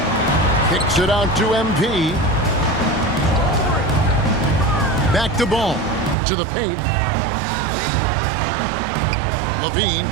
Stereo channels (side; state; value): left; drops out; at 6.2 s